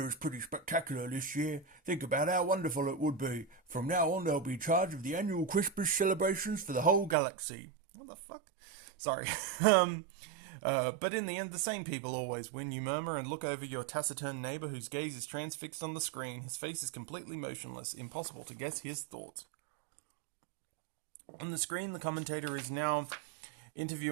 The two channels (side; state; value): left; drops out; at 7.2 s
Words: is pretty spectacular this year. Think about how wonderful it would be. From now on, they'll be in charge of the annual Christmas celebrations for the whole galaxy. What the fuck? Sorry. But in the end, the same people always win. You murmur and look over your taciturn neighbour whose gaze is transfixed on the screen. His face is completely motionless. Impossible to guess his thoughts. On the screen, the commentator is now